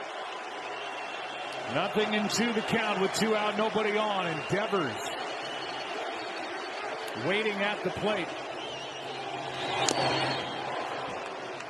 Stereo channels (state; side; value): identical; both; correlation 1.00